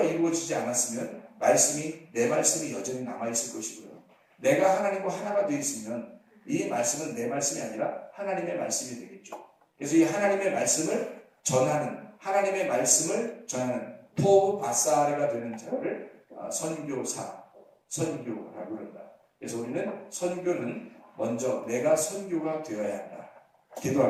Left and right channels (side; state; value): both; identical; correlation 1.00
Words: 이루어지지 않았으면 내 말씀이 여전히 남아있을 것이고요. 내가 하나님과 하나가 되어 있으면 이 말씀은 내 말씀이 아니라 하나님의 말씀이 되겠죠. 그래서 이 하나님의 말씀을 전하는 토브 바사르가 되는 자를 선교라고 그런다. 그래서 우리는 선교는 먼저 내가 선교가 되어야 한다.